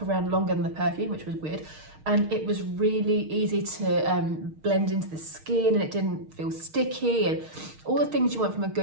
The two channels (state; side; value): late; left; 6.4 ms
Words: around longer than the perfume, which was weird, and it was really easy to blend into the skin and it didn't feel sticky and all the things you want from a